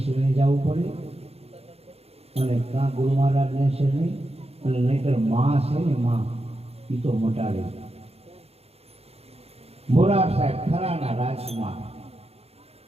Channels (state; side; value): late; left; 0.29 ms